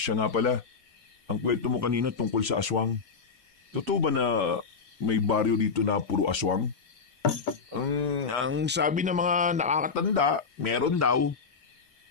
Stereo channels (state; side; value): quieter; right; 5.2 dB